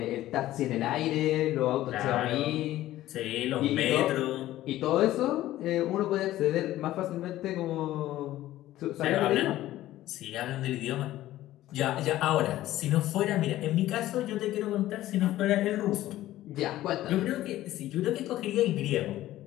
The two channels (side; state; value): right; quieter; 14.8 dB